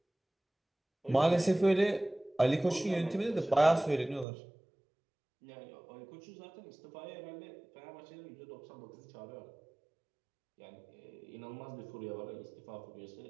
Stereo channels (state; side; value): drops out; left; at 4.2 s